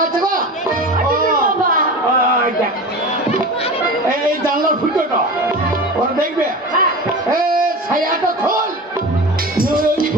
গো। বাবা, ওই দেখ, এই জানলার ফুটোটা ওরা দেখবে। হ্যাঁ, এ ছায়াটা খোল।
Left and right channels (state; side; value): normal; both; correlation 0.31